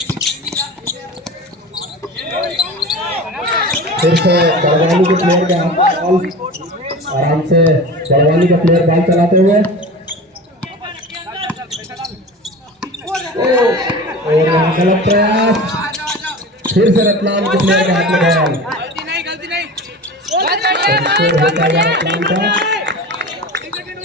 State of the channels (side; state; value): both; normal; correlation 0.33